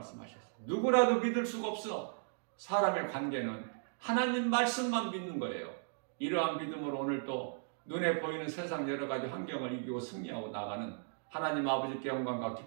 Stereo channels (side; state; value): left; silent; digital silence